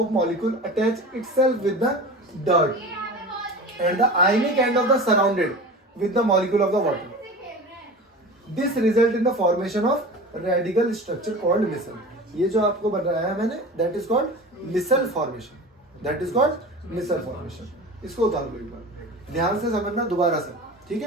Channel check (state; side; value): normal; both; correlation 0.34